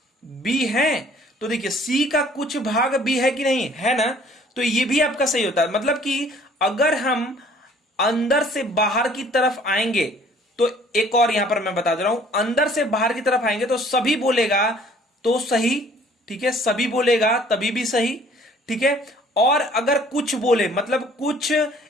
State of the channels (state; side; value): normal; both; correlation 0.56